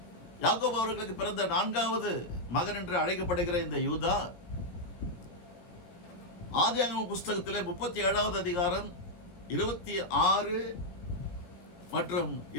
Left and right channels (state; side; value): late; right; 17 ms